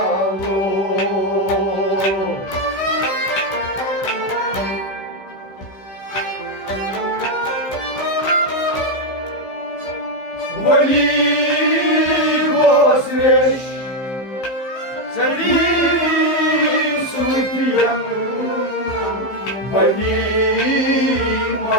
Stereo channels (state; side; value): late; right; 15 ms